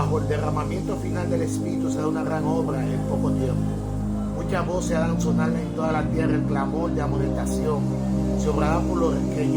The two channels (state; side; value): identical; both; correlation 1.00